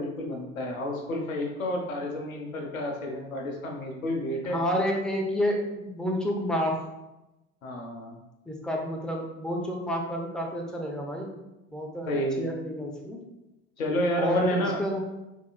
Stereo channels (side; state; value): both; normal; correlation 0.50